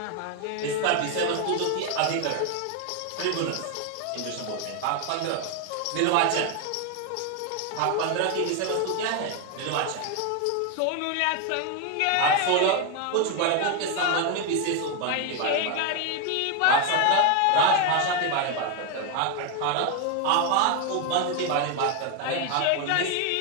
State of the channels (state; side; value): different; both; correlation 0.01